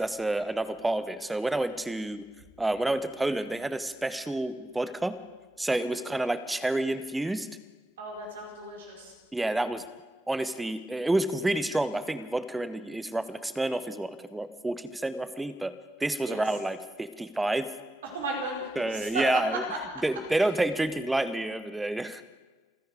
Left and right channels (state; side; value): normal; both; correlation 0.89